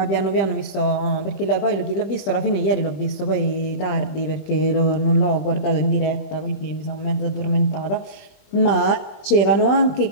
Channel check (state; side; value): late; right; 20 ms